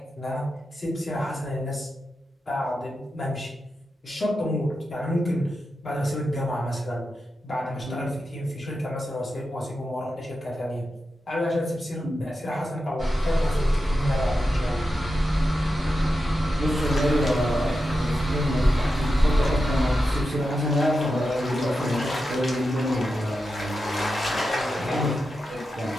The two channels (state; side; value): normal; both; correlation 0.90